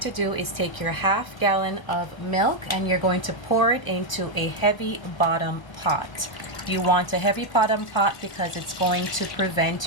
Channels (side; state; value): right; late; 1.1 ms